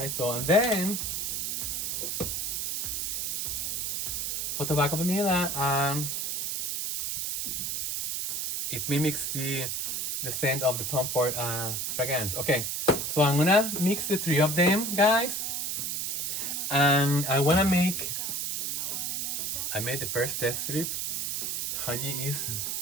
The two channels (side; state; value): right; noise; hiss, 1 dB below the sound